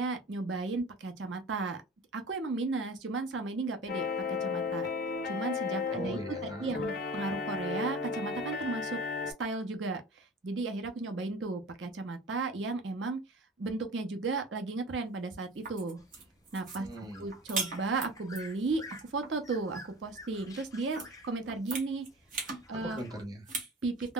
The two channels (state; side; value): normal; both; correlation 0.38